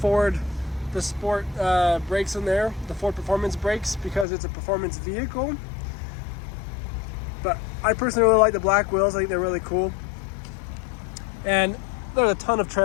brakes in there, the Ford Performance brakes, because it's a performance vehicle. But I personally really like the black wheels. I think they're really cool. And there's a ton of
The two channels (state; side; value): drops out; right; at 4.2 s